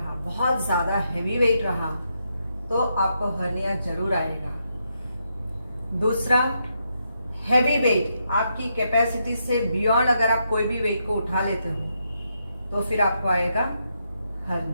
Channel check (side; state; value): both; inverted; correlation -0.81